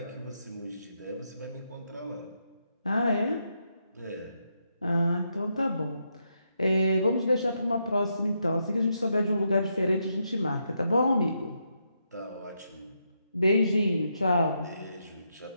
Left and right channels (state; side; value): inverted; both; correlation -0.81